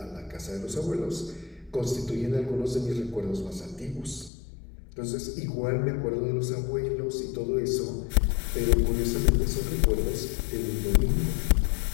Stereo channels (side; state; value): right; drops out; at 4.3 s